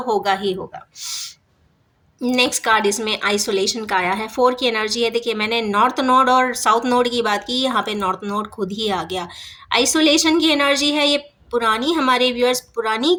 होगा ही होगा। नेक्स्ट कार्ड इसमें आइसोलेशन का आया है, 4 की एनर्जी है। देखिए, मैंने नॉर्थ नोड और साउथ नोड की बात की, यहाँ पे नॉर्थ नोड खुद ही आ गया। आइसोलेशन की एनर्जी है, ये पुरानी, हमारे व्यूअर्स पुरानी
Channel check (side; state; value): both; identical; correlation 1.00